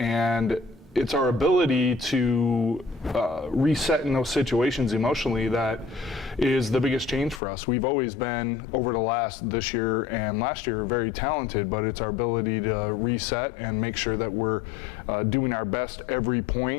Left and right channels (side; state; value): right; drops out; at 7.4 s